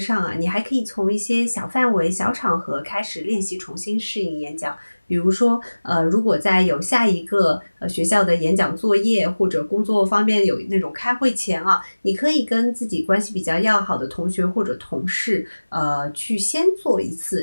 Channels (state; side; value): inverted; both; correlation -1.00